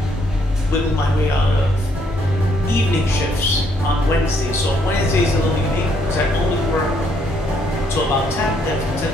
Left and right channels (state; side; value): normal; both; correlation 0.70